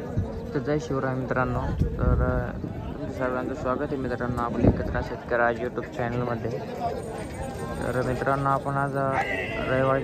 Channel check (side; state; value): both; identical; correlation 1.00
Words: जय शिवराय मित्रांनो. तर तुमचं सर्वांचं स्वागत आहे मित्रांनो आपल्या एकत्र शेतकरी आज यूट्यूब चॅनलमध्ये. तर मित्रांनो आपण आज